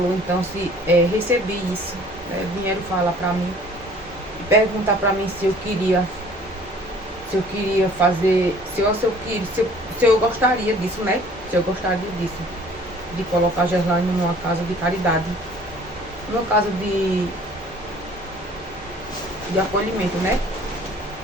então recebi isso, né? Vieram falar pra mim, perguntar pra mim se eu queria fazer, se eu gostaria disso, né? Se eu gostaria disso, de colocar Gerlane numa casa de caridade, numa casa de acolhimento, né?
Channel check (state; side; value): normal; both; correlation 0.52